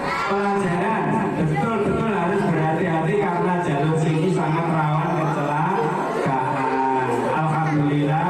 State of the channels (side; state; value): both; identical; correlation 1.00